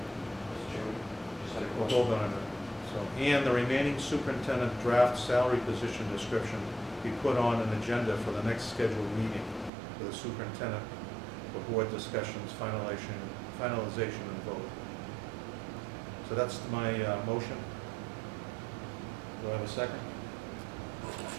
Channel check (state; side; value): drops out; left; at 9.7 s